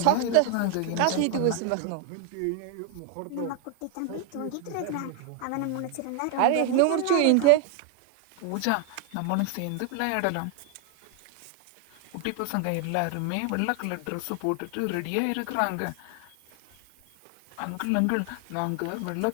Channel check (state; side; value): different; both; correlation 0.00